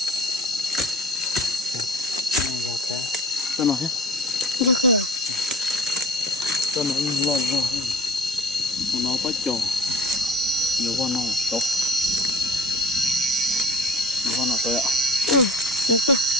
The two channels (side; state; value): both; normal; correlation 0.43